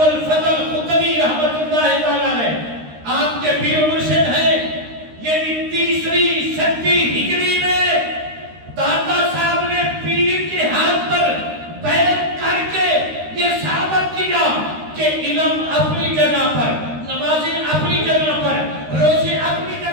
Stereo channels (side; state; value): left; late; 13 ms